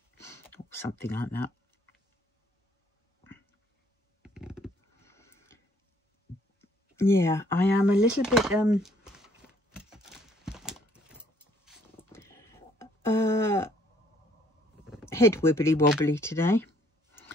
or something like that. Yeah, I am a little bit head wibbly wobbly today.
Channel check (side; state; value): both; normal; correlation 0.63